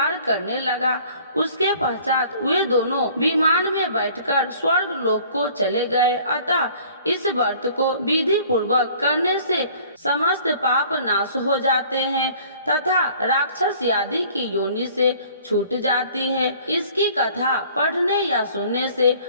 करने लगा। उसके पश्चात वे दोनों विमान में बैठकर स्वर्ग लोक को चले गए। अतः इस व्रत को विधि पूर्वक करने से समस्त पाप नाश हो जाते हैं तथा राक्षस आदि की योनि से छूट जाती है। इसकी कथा पढ़ने या सुनने से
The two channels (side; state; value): both; inverted; correlation -0.52